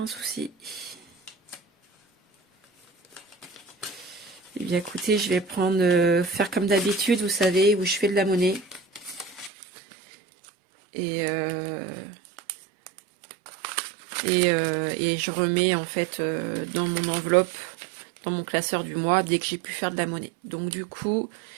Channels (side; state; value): left; drops out; at 9.5 s